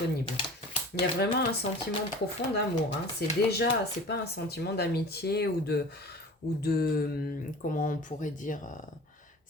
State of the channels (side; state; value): both; normal; correlation 0.40